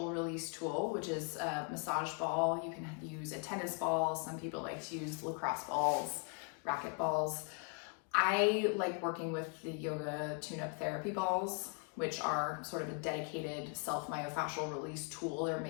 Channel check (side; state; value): right; quieter; 38.8 dB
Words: Release tool, which is a massage ball. You can use a tennis ball. Some people like to use lacrosse balls, racket balls. I like working with the yoga tune-up therapy balls, which are sort of a dedicated myofascial release tool. They're